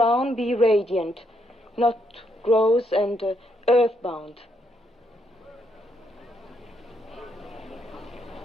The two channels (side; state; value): both; normal; correlation 0.75